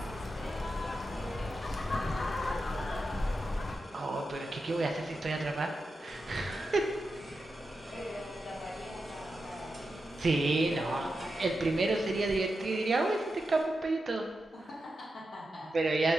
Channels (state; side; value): normal; both; correlation 0.89